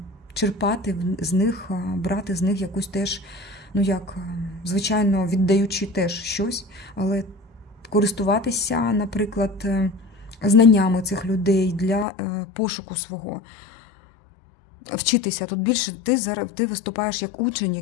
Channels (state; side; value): drops out; right; at 12.1 s